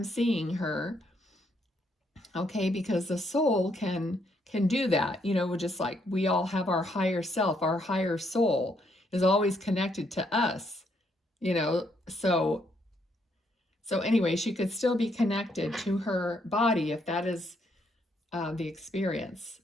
seeing her. Okay, because the soul can do that, just like we all have our higher self, our higher soul is always connected to us, So anyway, she could still be connected to her body if that is the experience.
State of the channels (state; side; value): normal; both; correlation 0.73